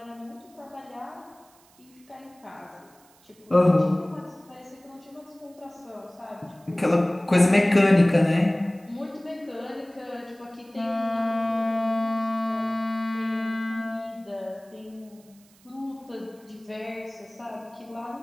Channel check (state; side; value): noise; right; hiss, 29 dB below the sound